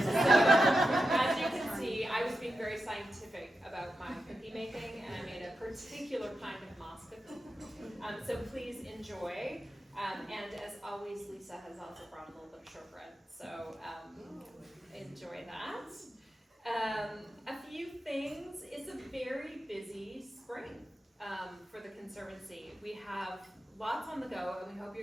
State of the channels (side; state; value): both; normal; correlation 0.90